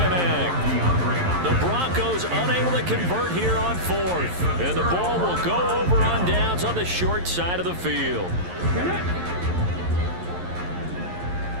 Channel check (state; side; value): late; left; 11 ms